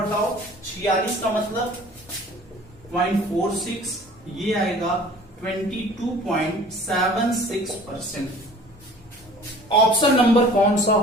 46 का मतलब 0.46, ये आएगा 22.76%। ऑप्शन नंबर कौन सा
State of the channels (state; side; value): normal; both; correlation 0.47